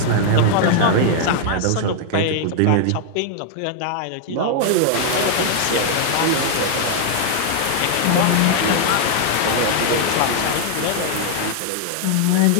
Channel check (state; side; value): different; both; correlation 0.00